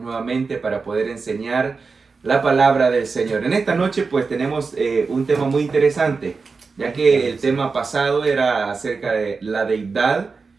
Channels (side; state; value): left; quieter; 4.6 dB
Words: nuevamente para poder enseñar la palabra del Señor. En esta noche pues tenemos un tema muy interesante, ya que el tema pasado era acerca de la deidad,